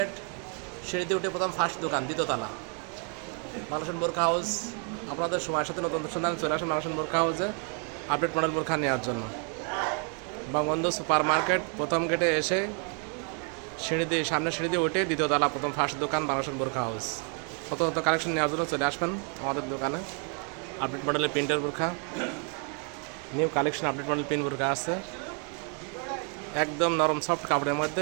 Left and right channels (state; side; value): quieter; left; 39.7 dB